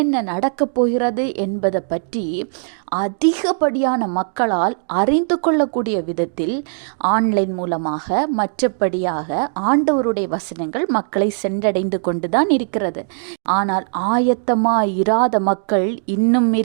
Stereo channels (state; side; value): silent; left; 66 dB below the other